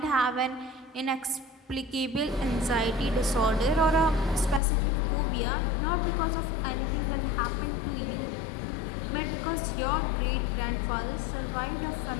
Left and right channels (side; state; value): right; drops out; at 4.6 s